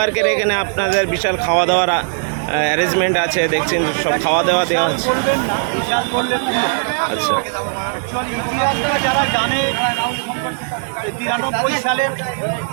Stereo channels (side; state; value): left; silent; digital silence